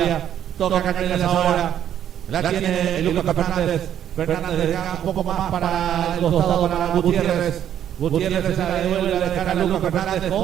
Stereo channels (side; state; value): left; quieter; 10.3 dB